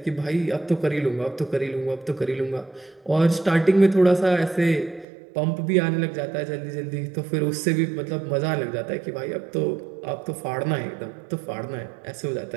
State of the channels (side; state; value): left; drops out; at 5.1 s